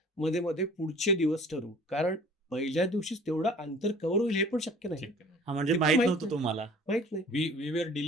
मध्ये-मध्ये पुढचे दिवस ठरवू. कारण पहिल्या दिवशीच तेवढं अंतर कव्हर होईल हे पण शक्य नाही. हां, म्हणजे ते पण माहीत माहीत नव्हतं नाही. तुम्हाला. माहीत नाही. We were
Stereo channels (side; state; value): both; normal; correlation 0.48